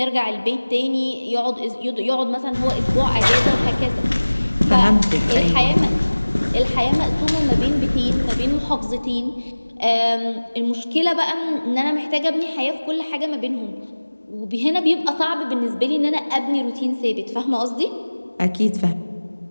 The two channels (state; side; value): inverted; both; correlation -1.00